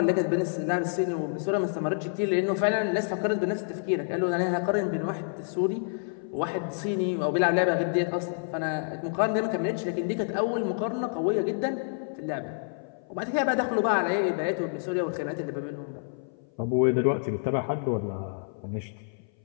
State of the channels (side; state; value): right; silent; 57 dB below the other